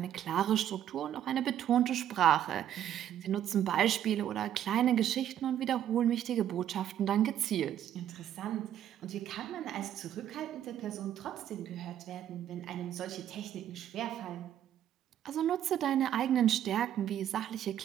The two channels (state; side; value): quieter; left; 10.8 dB